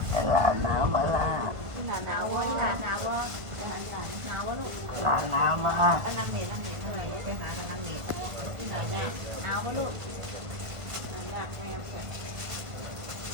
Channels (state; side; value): late; left; 1.5 ms